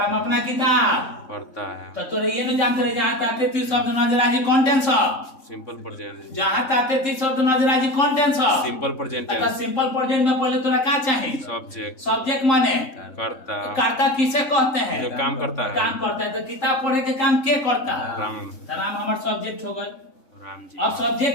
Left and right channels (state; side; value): late; right; 3.6 ms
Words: अपना किताब पढ़ता है तो तोरे ये न जानते रहे जहाँ ताते थी शब्द नजर आजी कंटेंट सब सिंपल प्रेजेंट जहाँ ताते थी शब्द नजर आजी कंटेंट सब सिंपल प्रेजेंट तो सिंपल प्रेजेंट में पहले तोरा का चाहिए सब्जेक्ट सब्जेक्ट माने करता करता किसे कहते हैं जो काम करता है काम करता है। तो किताब पढ़े के काम के करता है राम तो राम हमार सब्जेक्ट हो गए। राम जी अब